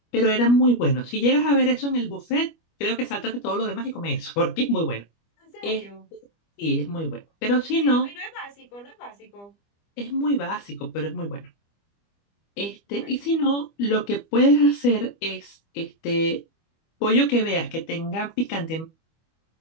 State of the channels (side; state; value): right; late; 25 ms